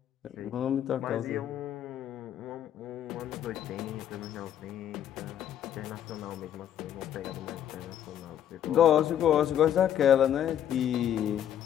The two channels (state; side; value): quieter; right; 10.3 dB